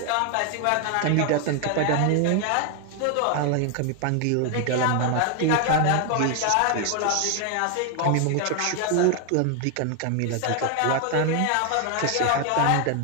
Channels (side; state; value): both; different; correlation 0.00